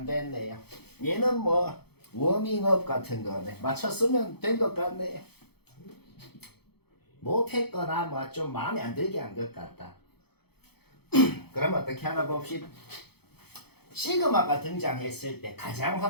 됐네요. 얘는 뭐 워밍업 같은 거네. 맞췄으면 된 것 같네요. 못했거나 뭐 좀 마음에 안 들게 한 것 같다. 그럼 어떻게 하나 봅시다. 시그마가 등장했을 때 가장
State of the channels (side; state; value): right; late; 0.97 ms